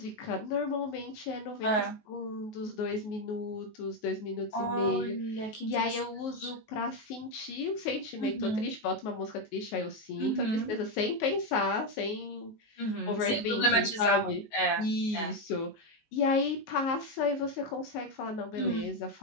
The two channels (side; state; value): right; late; 19 ms